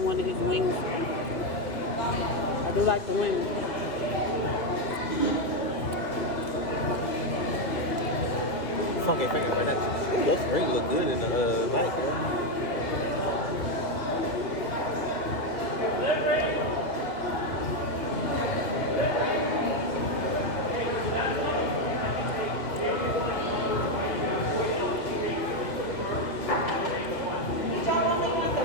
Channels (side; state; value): right; late; 2.7 ms